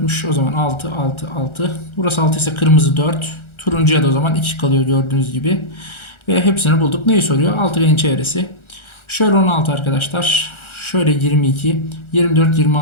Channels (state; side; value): late; right; 1.4 ms